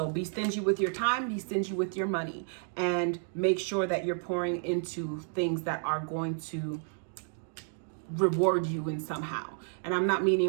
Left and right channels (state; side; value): silent; left; 57 dB below the other